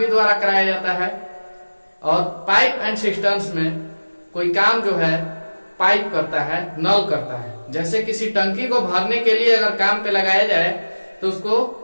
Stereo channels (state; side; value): inverted; both; correlation -1.00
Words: द्वारा कराया जाता है और पाइप एंड सिस्टम्स में कोई काम जो है पाइप करता है, नल करता है। जैसे किसी टंकी को भरने के लिए अगर काम पे लगाया जाए तो